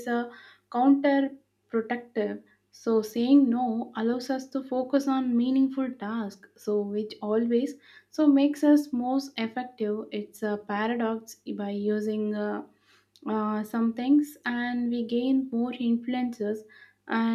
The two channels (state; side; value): identical; both; correlation 1.00